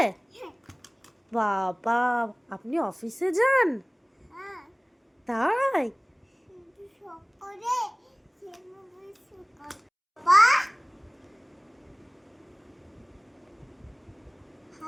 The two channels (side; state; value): both; identical; correlation 1.00